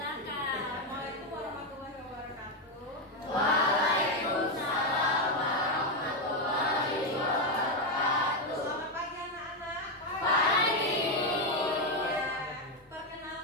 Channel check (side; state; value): both; normal; correlation 0.06